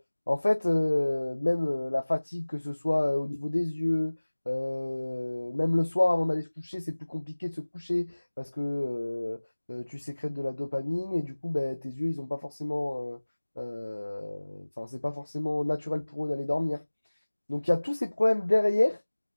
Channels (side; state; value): both; inverted; correlation -1.00